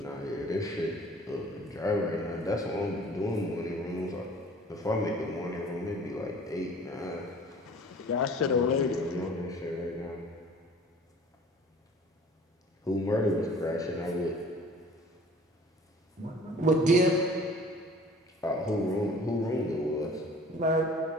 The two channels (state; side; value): normal; both; correlation 0.48